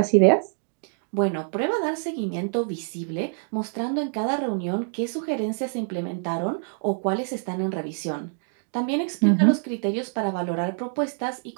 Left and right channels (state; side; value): silent; left; 61 dB below the other